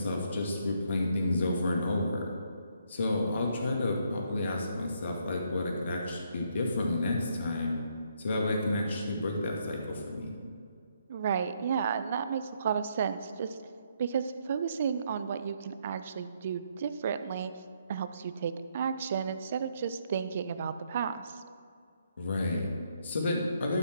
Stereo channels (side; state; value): both; inverted; correlation -0.73